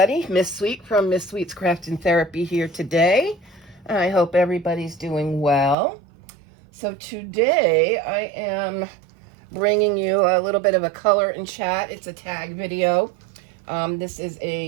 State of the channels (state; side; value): drops out; left; at 5.8 s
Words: Miss Sweet from Miss Sweet's Craft and Therapy here today. I hope everybody's doing well. So today I am bringing you a little bit of a color and chat. It's a tag video. This is